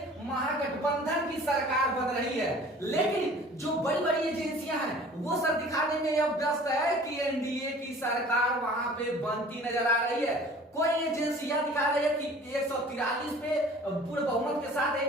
महागठबंधन की सरकार बन रही है। लेकिन जो बड़ी बड़ी एजेंसियां हैं वो सर दिखाने में यह व्यस्त है कि एनडीए की सरकार वहां पे बनती नजर आ रही है। कोई एजेंसियां दिखा रही है कि 143 पे पूर्ण बहुमत के साथ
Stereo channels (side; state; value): both; normal; correlation 0.47